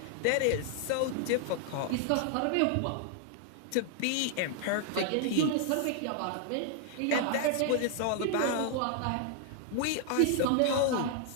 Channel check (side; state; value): both; different; correlation 0.00